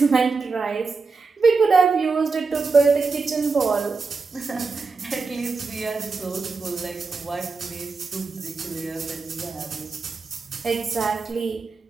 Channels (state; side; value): quieter; left; 4.4 dB